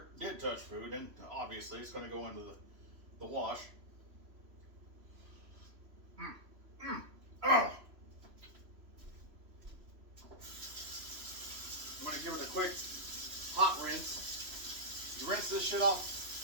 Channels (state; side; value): late; left; 3.0 ms